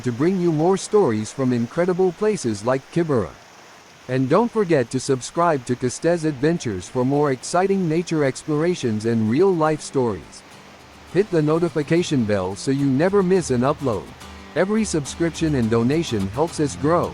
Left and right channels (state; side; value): identical; both; correlation 1.00